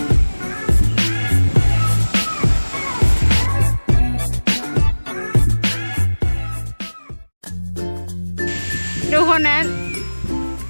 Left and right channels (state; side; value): inverted; both; correlation -1.00